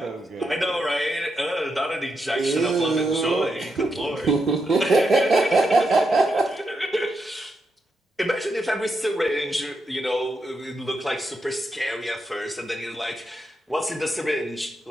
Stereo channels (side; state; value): both; normal; correlation 0.84